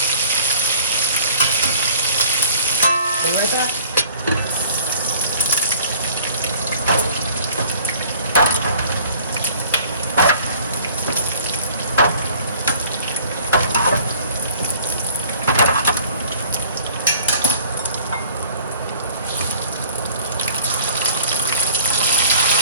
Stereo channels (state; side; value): inverted; both; correlation -0.51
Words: Be right back.